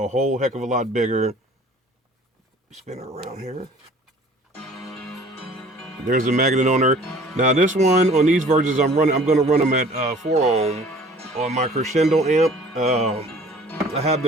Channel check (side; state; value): both; normal; correlation 0.50